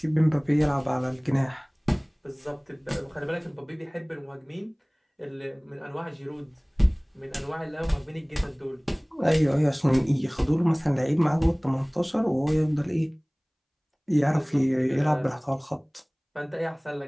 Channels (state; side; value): identical; both; correlation 1.00